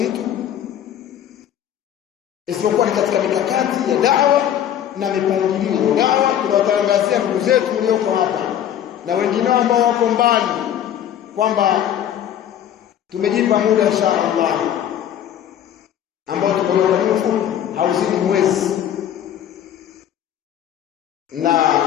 isipokuwa ni katika mikakati ya da'wa na mipangilio ya da'wa. Tunawatangazia ndugu zetu walioko hapa na wengine ambao wako mbali kwamba tumejipa muda inshallah ambao tumeweka mfupi hauzidi mwezi, na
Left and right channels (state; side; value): quieter; right; 10.4 dB